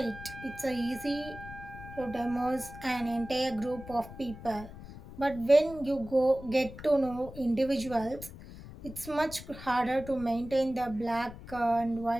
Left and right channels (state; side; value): noise; left; rumble, 14 dB below the sound